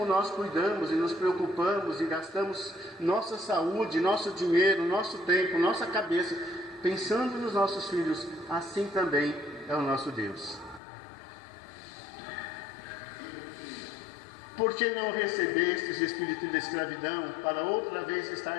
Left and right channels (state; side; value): drops out; right; at 10.8 s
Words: nós cuidamos e nos preocupamos e gastamos nossa saúde, nosso dinheiro, nosso tempo, nossa cabeça, pensando nos nossos filhos, assim também é o nosso Deus. Por que não recebestes o espírito de escravidão, para outra vez